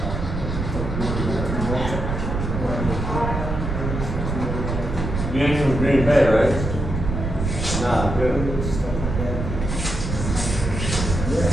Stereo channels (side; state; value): right; noise; rumble, 3 dB below the sound